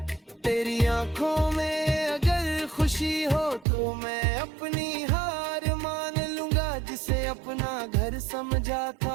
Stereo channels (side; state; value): left; drops out; at 3.7 s